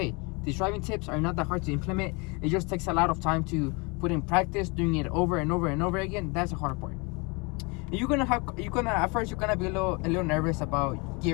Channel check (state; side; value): quieter; right; 29.7 dB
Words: these driving tips are not that hard to implement. It just takes a lot of time to put in practice, doing it over and over and over again. That's the hard part. At first you're gonna be a little nervous about